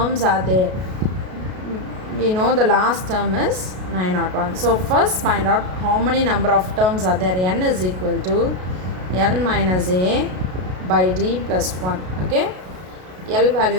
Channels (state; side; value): late; left; 33 ms